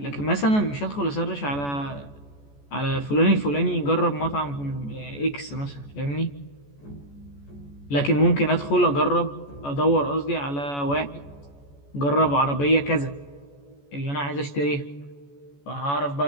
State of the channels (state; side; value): late; right; 14 ms